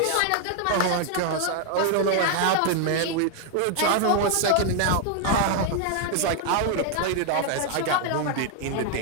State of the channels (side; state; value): both; different; correlation 0.00